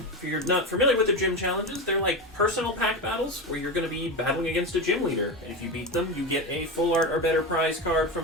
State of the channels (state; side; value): normal; both; correlation 0.19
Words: If you're not familiar with the gym challenges, they're like personal pack battles where you're going to be battling against a gym leader. And if you beat them, you get a full art or better prize card